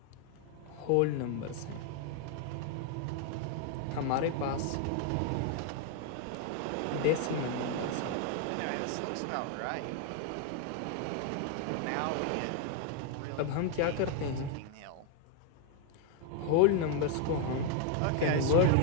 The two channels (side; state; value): both; different; correlation 0.01